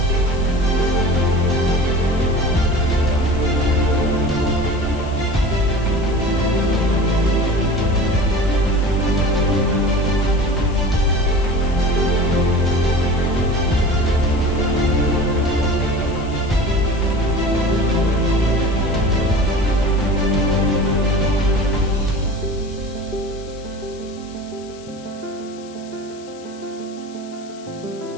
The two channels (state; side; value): noise; left; hiss, 23 dB below the sound